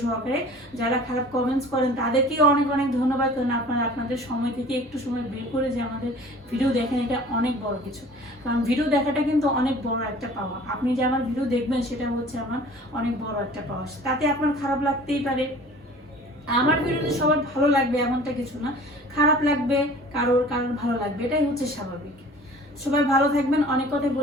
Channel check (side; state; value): both; normal; correlation 0.46